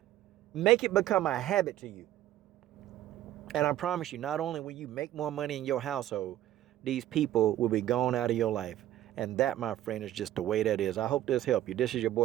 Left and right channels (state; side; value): quieter; left; 13.2 dB